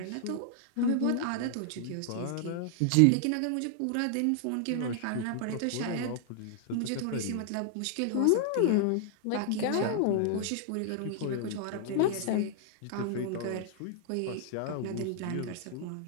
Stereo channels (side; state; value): both; different; correlation -0.01